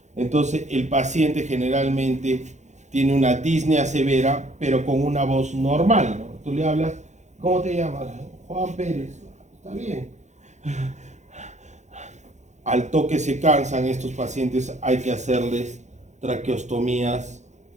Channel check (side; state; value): left; late; 0.34 ms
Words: Entonces el paciente generalmente tiene una disnea severa, pero con una voz normal, ¿no? Tú le hablas, ¿cómo te llamas? Juan Pérez. Está bien. Al toque se cansan estos pacientes, hay que hacerles traqueostomías